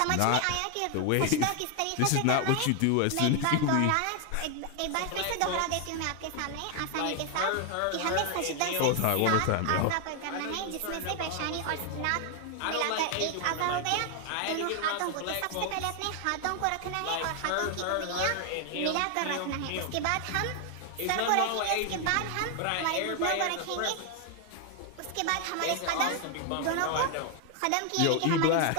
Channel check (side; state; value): both; different; correlation 0.00